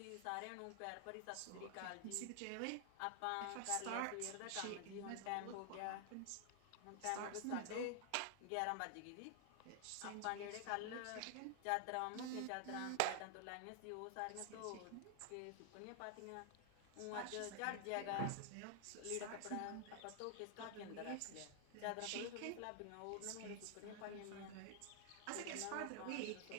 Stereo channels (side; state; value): both; different; correlation 0.00